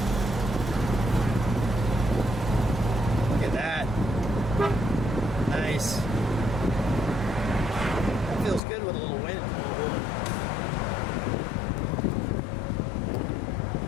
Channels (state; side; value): drops out; right; at 8.6 s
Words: Look at that. Nice. That feels good with a little wind.